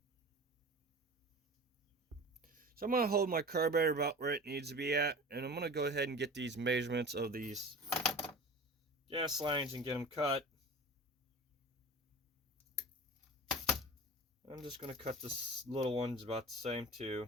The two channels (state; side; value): normal; both; correlation 0.36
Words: So I'm going to hold my carburetor about where it needs to be at, and I'm going to go ahead and get these measurements of these gas lines and get them cut. I'm just going to cut this little ones about the same